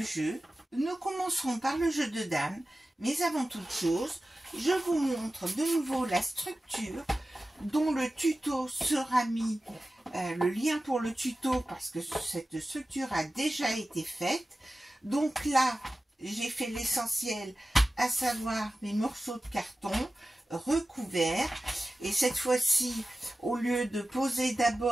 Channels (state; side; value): normal; both; correlation 0.95